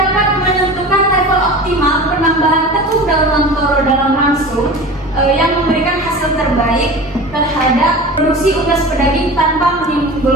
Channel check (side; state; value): both; normal; correlation 0.34